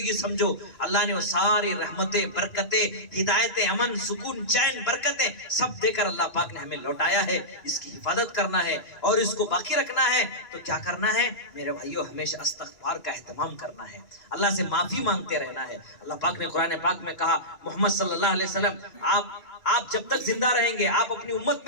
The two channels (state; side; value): late; right; 2.9 ms